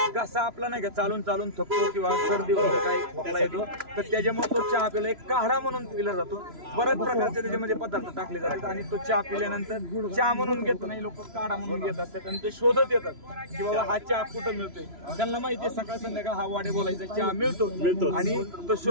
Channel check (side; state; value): left; late; 3.0 ms